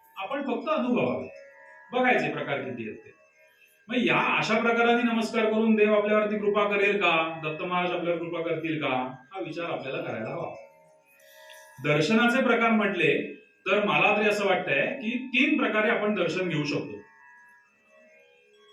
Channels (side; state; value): both; identical; correlation 1.00